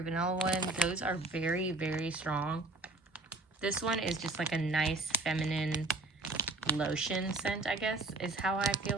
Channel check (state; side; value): quieter; left; 3.2 dB